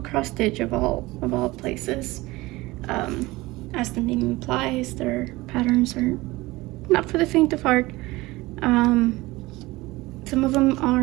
Stitch, of all places. As the name implies, their patterns are not for the faint of heart. Some of them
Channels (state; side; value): quieter; left; 20.4 dB